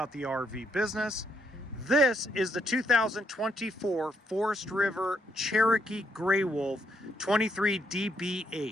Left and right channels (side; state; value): both; normal; correlation 0.75